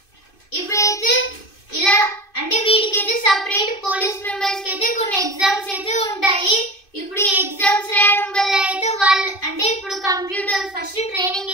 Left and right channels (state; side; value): late; right; 2.5 ms